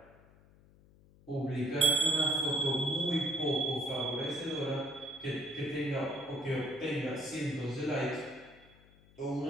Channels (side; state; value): left; noise; hum, 26 dB below the sound